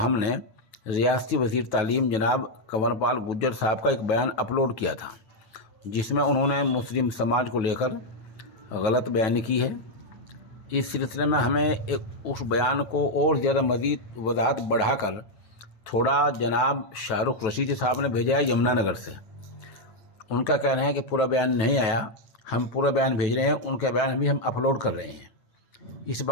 रियासती वज़ीर तालीम जनाब कंवरपाल गुर्जर साहब का एक बयान अपलोड किया था, जिसमें उन्होंने मुस्लिम समाज को लेकर गलत बयानी की है। इस सिलसिले में हमें उस बयान को और ज़्यादा मज़ीद वजाहत बढ़ाकर थोड़ा जनाब शाहरुख रशीद साहब ने भेजा है यमुनानगर से। उनका कहना है कि पूरा बयान नहीं आया, हम पूरा बयान भेज रहे हैं, उनका बयान भी हम अपलोड कर रहे हैं। इस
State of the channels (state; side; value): late; right; 9.2 ms